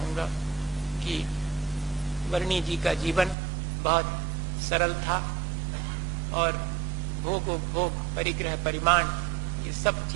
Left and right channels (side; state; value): left; drops out; at 3.4 s